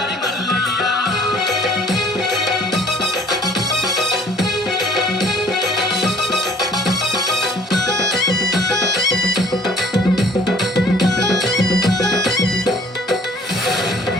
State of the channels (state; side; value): normal; both; correlation 0.54